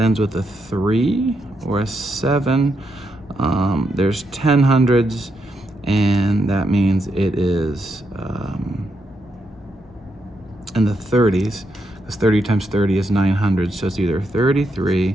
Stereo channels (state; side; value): normal; both; correlation 0.81